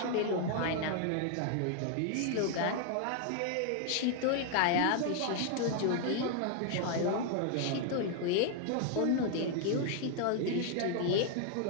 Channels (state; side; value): different; both; correlation 0.00